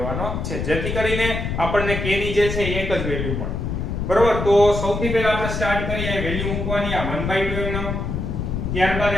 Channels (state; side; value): noise; left; rumble, 3 dB below the sound